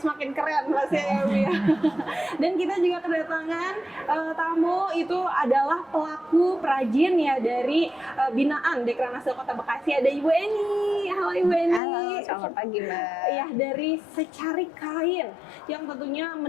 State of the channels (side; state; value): right; drops out; at 11.8 s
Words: semakin keren Mas ya Bu ya. Dan kita juga kedatangan tamu itu adalah pelaku perajin ya dari binaan Dekranasda Kota Bekasi. Ada Ibu Eni. Halo Ibu Eni. Halo, selamat pagi Mbak. Ya, dari Secari Kain yang tentunya